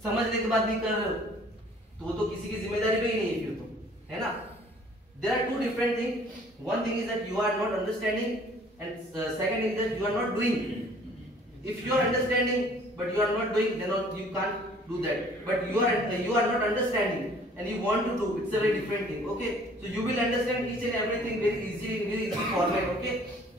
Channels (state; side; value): normal; both; correlation 0.55